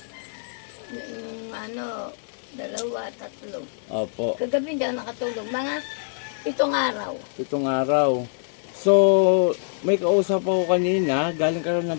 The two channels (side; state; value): right; silent; 56 dB below the other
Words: Yung dalawa, tatlo. Opo. Kagabi hindi ako nakatulog. Mga 7 araw. 7 araw. So, may kausap ako kanina, galing ka rin